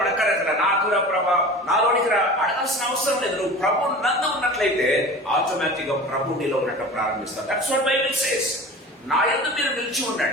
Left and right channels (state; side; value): normal; both; correlation 0.37